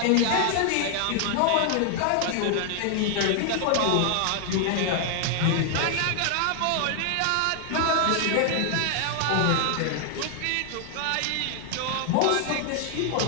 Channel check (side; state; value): both; different; correlation 0.00